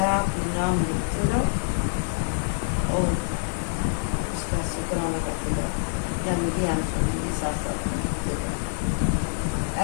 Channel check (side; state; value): right; silent; digital silence